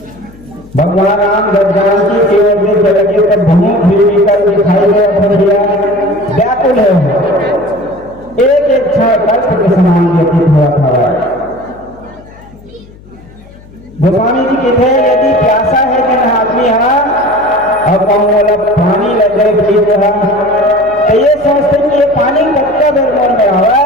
भगवान राम जब जानकी की ओर देखे लगे तब भूमि फिर विकल दिखाई दे व्याकुल है। एक एक क्षण कष्ट के समान व्यतीत हुआ था। गोस्वामी जी कहते हैं यदि प्यासा है जिन आदमी और बोला पानी लग गए पीत रहा तो ये सोचते कि ये पानी कच्चा बेर मन में आवा है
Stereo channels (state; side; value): noise; left; hum, 23 dB below the sound